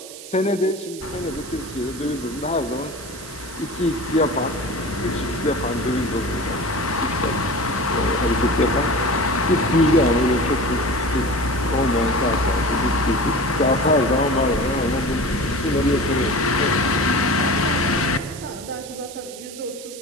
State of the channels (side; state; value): right; noise; hiss, 15 dB below the sound